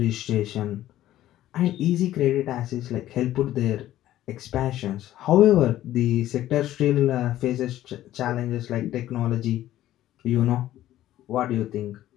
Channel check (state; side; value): quieter; right; 13.7 dB